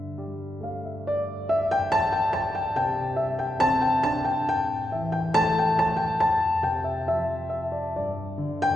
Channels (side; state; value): both; normal; correlation 0.86